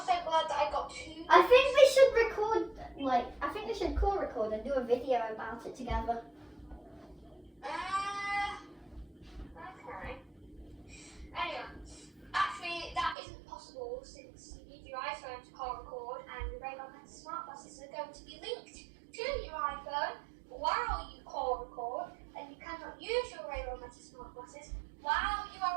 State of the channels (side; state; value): left; drops out; at 13.2 s